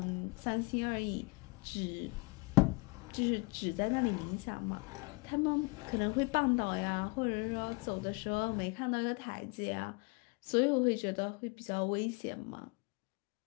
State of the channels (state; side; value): quieter; right; 27.4 dB